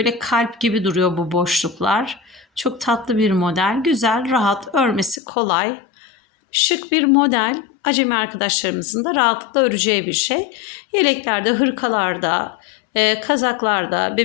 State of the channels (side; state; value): right; drops out; at 5.2 s